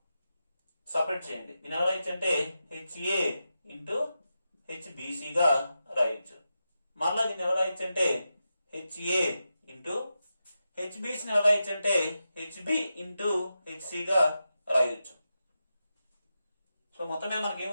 సపరేట్ చేయండి. దీని ఎలా రాయొచ్చు అంటే HA ఇంటూ HBC గా రాయొచ్చు. మరలా దీన్ని ఎలా రాయొచ్చు అంటే HA ఇంటూ HBC ని ఎలా రాయొచ్చు అంటే HB ఇంటూ HC గా రాయొచ్చు. సో మొత్తం మీద మనకి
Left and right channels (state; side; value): inverted; both; correlation -0.89